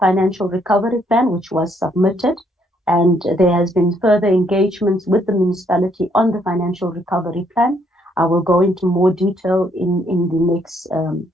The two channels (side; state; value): both; normal; correlation 0.70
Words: recovery plan which was submitted, and there has been further engagements with the municipality on the financial recovery plan. I will go into more detail in the next